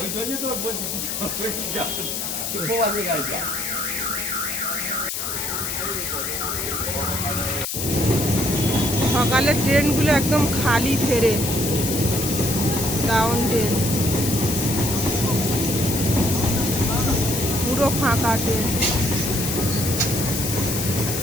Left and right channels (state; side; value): noise; left; hiss, 3 dB below the sound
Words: জন্য তো বলছি খোয়াতে গাইছা। সকালের ট্রেনগুলো একদম খালি ফেরে, ডাউন ট্রেন পুরো ফাঁকা ট্রেন।